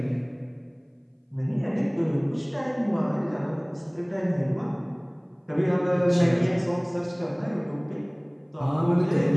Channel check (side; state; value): both; identical; correlation 1.00